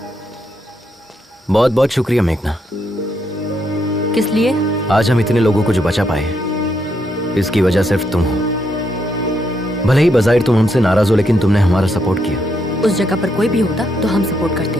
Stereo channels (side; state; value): both; normal; correlation 0.78